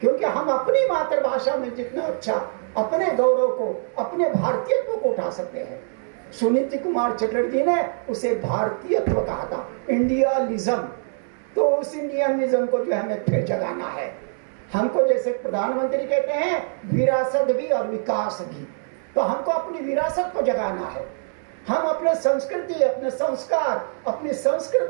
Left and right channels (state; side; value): silent; left; digital silence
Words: क्योंकि हम अपनी मातृभाषा में जितना अच्छा अपने गौरव को, अपने भारतीयत्व को उठा सकते हैं। सुनीति कुमार चटर्जी ने उसे भारतीयत्व कहा था, इंडियालिज्म। तो उस इंडियनिज्म को जो हमें फिर जगाना है। हमको जैसे प्रधानमंत्री कहते हैं विरासत भी और विकास भी, तो हमको अपनी विरासत को जगाना है। हम अपने संस्कृति, अपने संस्कार, अपनी संस्कृत